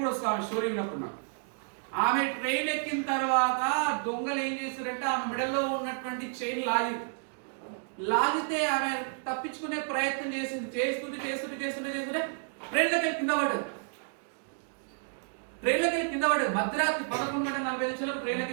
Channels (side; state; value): left; silent; digital silence